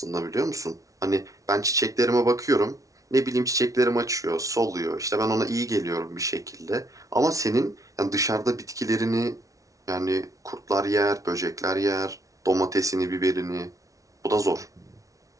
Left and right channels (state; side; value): late; left; 0.17 ms